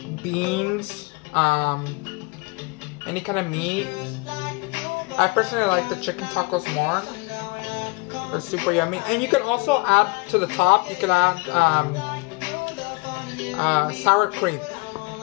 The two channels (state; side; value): quieter; right; 27.2 dB